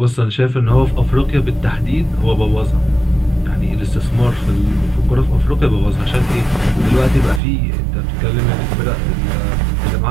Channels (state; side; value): drops out; left; at 7.4 s